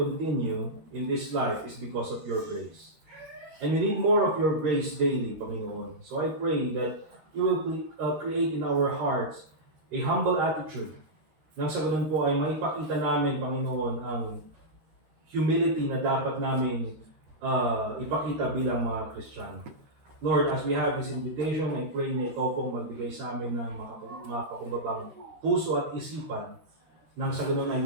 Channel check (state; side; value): late; left; 13 ms